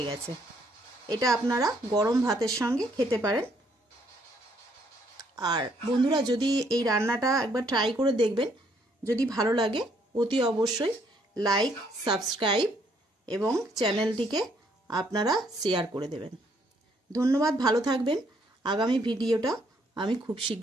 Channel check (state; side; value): normal; both; correlation 0.68